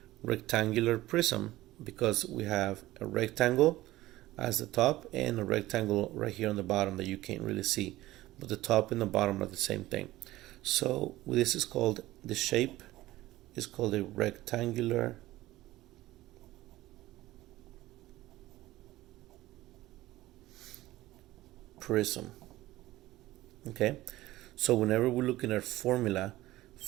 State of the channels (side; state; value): left; quieter; 16.9 dB